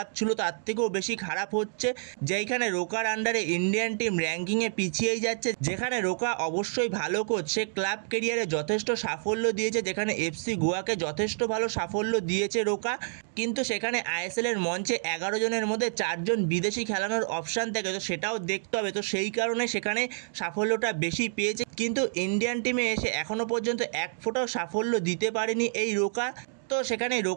ছিল তার থেকেও বেশি খারাপ হচ্ছে। যেখানে রোকার আন্ডারে ইন্ডিয়ান টিম র্যাঙ্কিংয়ে পিছিয়েই যাচ্ছে। যেখানে রোকা অবশ্যই ভালো কোচ, সে ক্লাব কেরিয়ারে যথেষ্ট সাফল্য দিয়েছে, যেখানে এফসি গোয়াকে যথেষ্ট ভালো সাফল্য দিয়েছে রোকা। কিন্তু সেখানে আইএসএল এর মঞ্চে 11 জনের মধ্যে 4 জন বিদেশি খেলানোর অপশান থাকে, তো সেটাও দেখতে হবে। তো সেই কারণে সেখানে সাফল্যটা বেশি পেয়েছে, কিন্তু ইন্ডিয়ান টিমে এসে এখনও পর্যন্ত এক ফোঁটাও সাফল্য দিতে পারেনি এই রোকা। তো সেখানে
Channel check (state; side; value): silent; left; digital silence